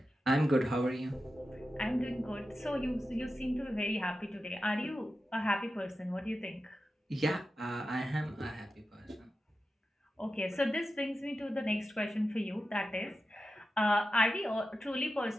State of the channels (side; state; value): both; normal; correlation 0.91